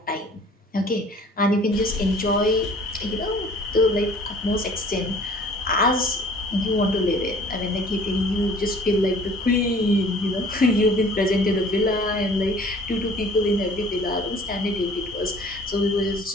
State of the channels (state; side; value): normal; both; correlation 0.51